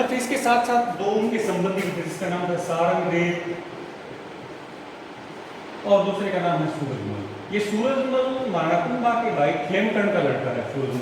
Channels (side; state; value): both; identical; correlation 1.00